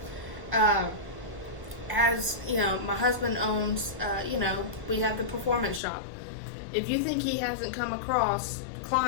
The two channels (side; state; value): right; drops out; at 5.8 s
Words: My husband owns. We have the performance shop. If you think he hasn't come across